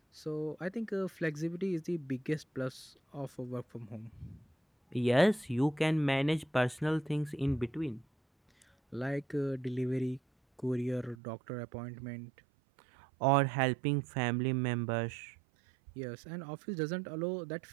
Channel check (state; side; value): drops out; left; at 11.2 s